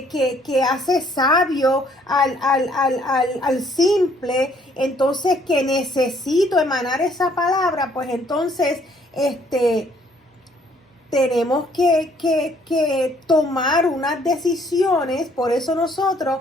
hace sabio al simple, entonces que necesito emanar esa palabra, pues entonces tenemos que tomar unas decisiones. Por eso nosotros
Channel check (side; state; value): both; normal; correlation 0.64